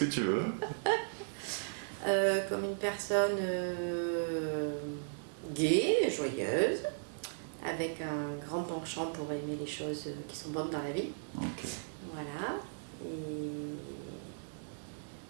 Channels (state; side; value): silent; left; digital silence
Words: que tu veux. Comme une personne gaie, joyeuse, avec un grand penchant pour aimer les choses qui sont bonnes dans la vie. Okay. Voilà. Et